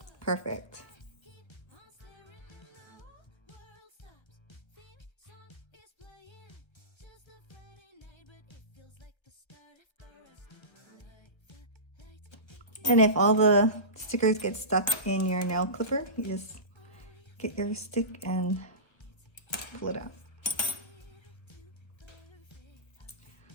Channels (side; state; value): right; late; 1.2 ms